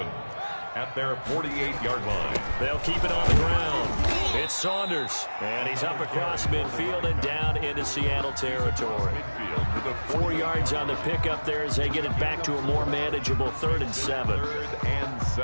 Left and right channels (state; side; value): inverted; both; correlation -1.00